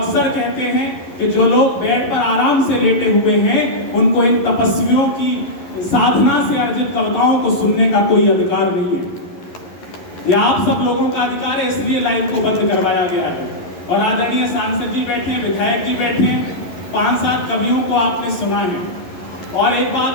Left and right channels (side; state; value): right; late; 11 ms